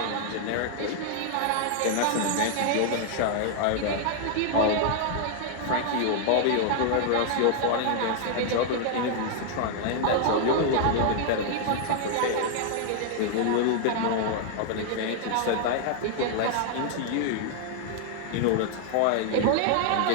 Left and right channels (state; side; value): different; both; correlation 0.00